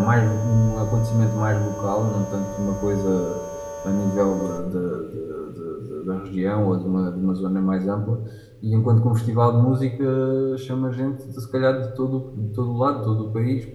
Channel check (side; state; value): both; identical; correlation 1.00